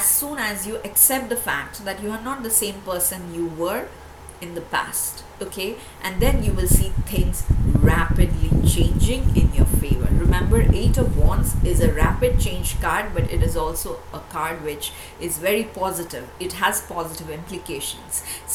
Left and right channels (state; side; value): identical; both; correlation 1.00